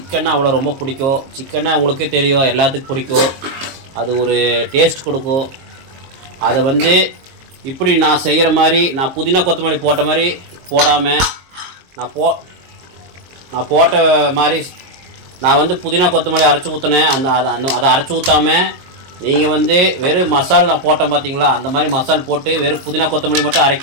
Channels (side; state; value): left; late; 22 ms